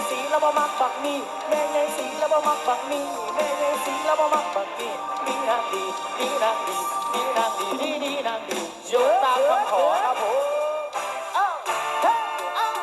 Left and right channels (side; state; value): both; identical; correlation 1.00